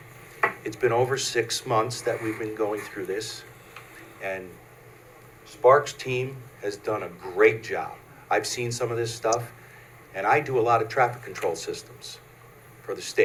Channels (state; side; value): identical; both; correlation 1.00